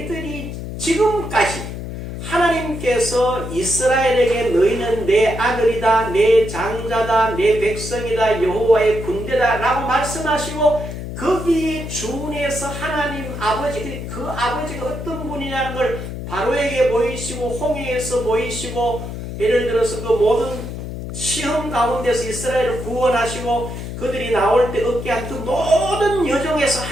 지금까지 하나님께서 이스라엘에게 너희는 내 아들이다, 내 장자다, 내 백성이다, 여호와의 군대다 라고 말씀하시고 거기에 준해서 하나님 아버지, 그 아버지가 어떤 분이냐는 걸 바로에게 보이시고 홍해에서 보이시고 예를 들어서 그 모든 시험 가운데서 이스라엘을 구원하시고 그들이 나올 때 얻게 한 그 모든 여정에서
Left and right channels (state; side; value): noise; left; hum, 7 dB below the sound